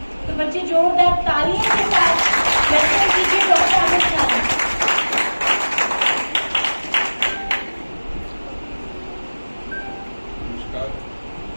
तो बच्चे जोरदार तालियों के साथ वेलकम कीजिए डॉक्टर अमित नारंग। नमस्कार।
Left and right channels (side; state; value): both; inverted; correlation -1.00